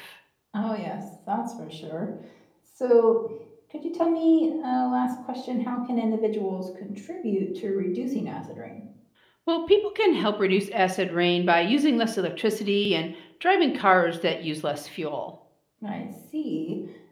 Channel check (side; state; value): both; identical; correlation 1.00